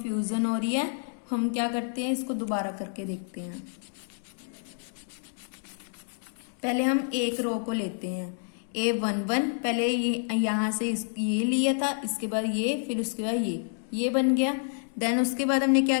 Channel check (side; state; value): right; silent; digital silence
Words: हो रही है, हम क्या करते हैं, इसको दोबारा करके देखते हैं। पहले हम एक रो को लेते हैं, a11, पहले ये यहां से ये लिया था, इसके बाद ये, फिर उसके बाद ये, ये बन गया। देन उसके बाद हमने क्या